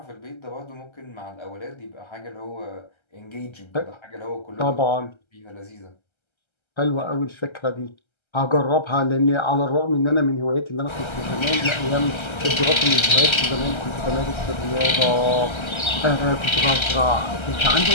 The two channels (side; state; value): right; late; 1.3 ms